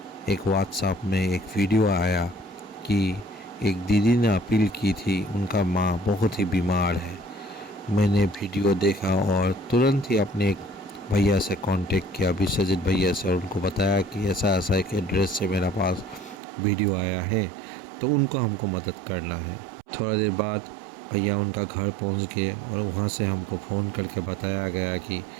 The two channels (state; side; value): drops out; left; at 16.4 s